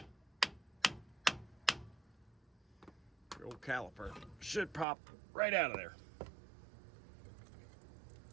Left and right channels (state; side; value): drops out; left; at 4.9 s